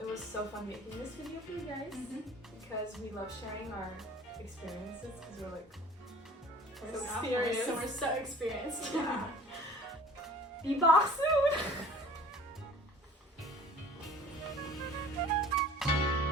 was so fun making this video for you guys, because we love sharing our experiences, because we're like so sophomores, serious. so we're so experienced. Yeah. Be back soon.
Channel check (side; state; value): both; normal; correlation 0.47